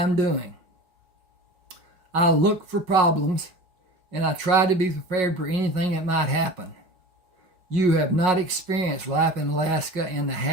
doing. I look for problems, and I try to be prepared for anything that might happen. You have not experienced life in Alaska and the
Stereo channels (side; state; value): left; late; 5.5 ms